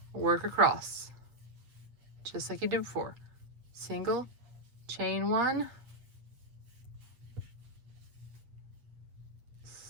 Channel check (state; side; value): late; left; 8.2 ms